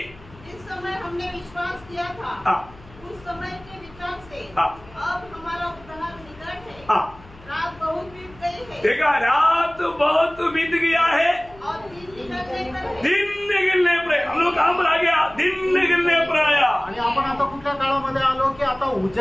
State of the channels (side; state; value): left; noise; hum, 22 dB below the sound